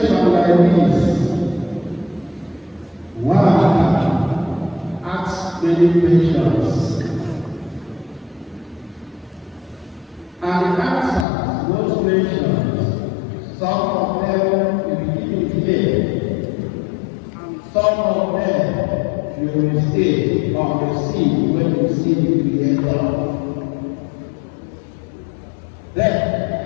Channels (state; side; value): drops out; right; at 11.2 s